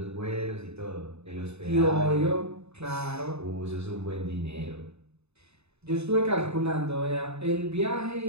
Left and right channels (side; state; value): left; late; 0.80 ms